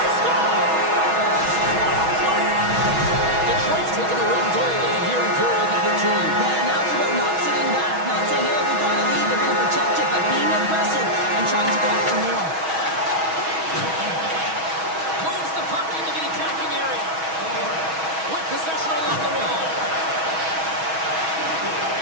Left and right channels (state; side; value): late; left; 6.2 ms